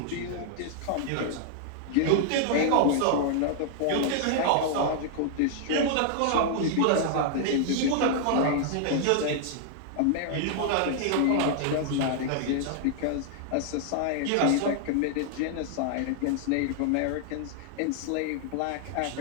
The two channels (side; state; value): both; different; correlation -0.01